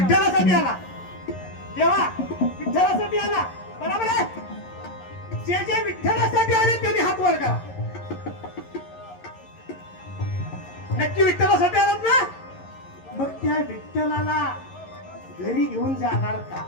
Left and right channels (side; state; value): right; late; 11 ms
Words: आला. देवा विठ्ठलासाठी आला, बरोबर आहे. जे जे विठ्ठलासाठी आले त्यांनी हात वर करा. नक्की विठ्ठलासाठी आलात ना? मग त्या विठ्ठलाला घरी घेऊन जाणार का?